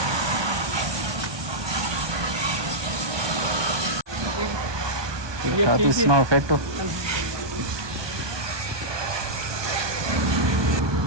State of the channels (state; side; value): late; left; 1.2 ms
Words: तू सुनाओ फिट हो?